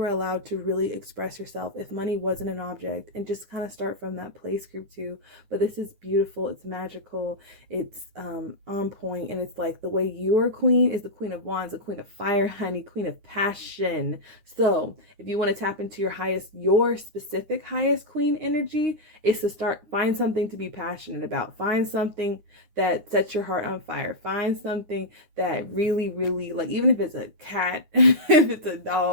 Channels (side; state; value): left; late; 9.7 ms